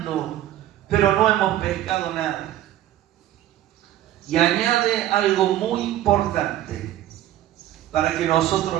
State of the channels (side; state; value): left; quieter; 13.1 dB